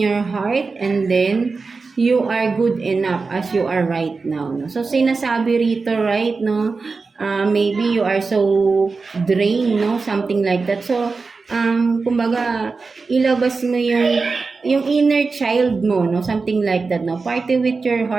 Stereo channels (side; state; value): left; quieter; 4.3 dB